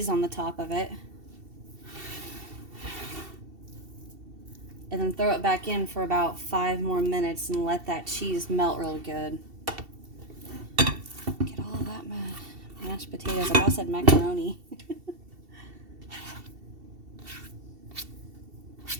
on the top of it. And then throw it back in for about 5 more minutes and let that cheese melt real good. Get all of that mashed potatoes. I almost said macaroni.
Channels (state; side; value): late; left; 2.7 ms